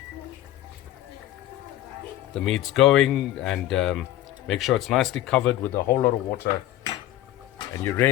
The meat's going, and make sure it's nicely covered with a whole lot of water. And you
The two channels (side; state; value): right; quieter; 13.6 dB